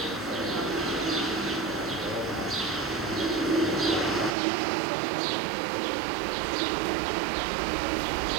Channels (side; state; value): left; drops out; at 4.3 s